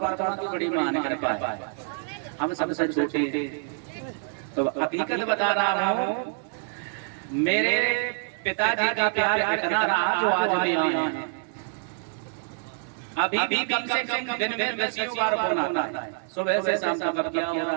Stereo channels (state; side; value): silent; left; digital silence